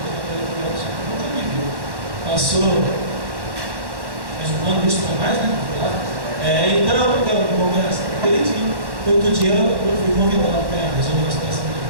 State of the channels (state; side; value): late; left; 1.1 ms